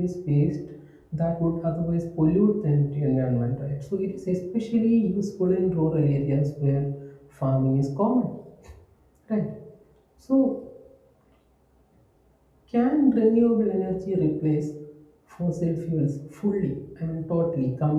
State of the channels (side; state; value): both; identical; correlation 1.00